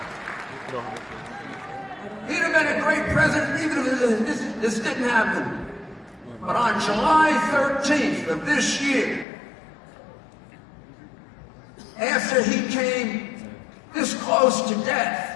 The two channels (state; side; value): drops out; right; at 9.2 s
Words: He'd have been a great president even if this didn't happen. But on July 13th of this year, after he came this close to